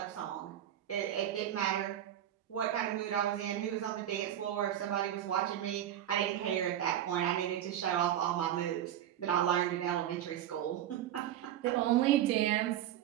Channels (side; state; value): left; quieter; 11.4 dB